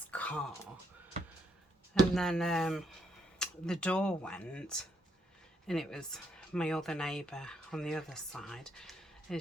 car. And then the door went, and it was my other neighbour on the other side,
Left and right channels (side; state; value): both; normal; correlation 0.75